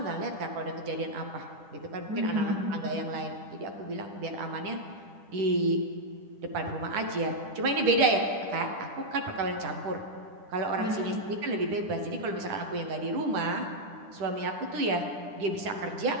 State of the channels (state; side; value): late; left; 10 ms